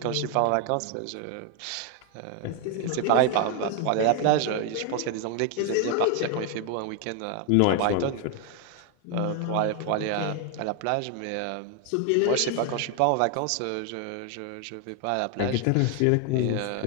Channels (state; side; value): different; both; correlation 0.00